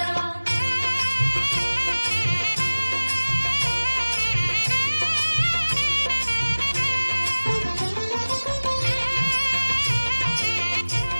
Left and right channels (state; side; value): inverted; both; correlation -1.00